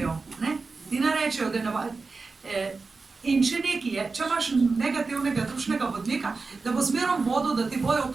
ti ne rečejo, da ne. In če nekaj je, če imaš negativnega dušnega vodnika, da bo zmeraj vodil, da ti bojo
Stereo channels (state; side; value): quieter; left; 4.2 dB